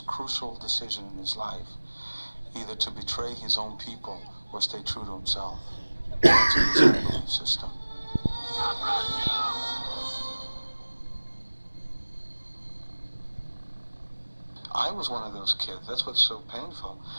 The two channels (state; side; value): inverted; both; correlation -1.00